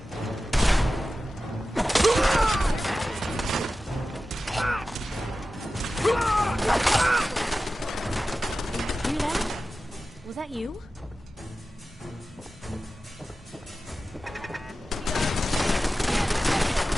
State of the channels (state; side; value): normal; both; correlation 0.94